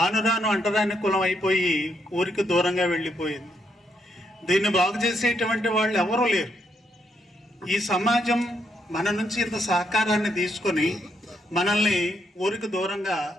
రాను అంటరాని కులం అయిపోయి ఊరికి దూరంగా వెళ్ళిపోయింది. దీన్ని బాగు చేసేటువంటి వాళ్ళు ఎవరూ లేరు. ఈ సమాజం మన నుంచి ఇంత సహకారాన్ని తీసుకొని మనల్ని ఊరికి దూరంగా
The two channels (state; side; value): normal; both; correlation 0.77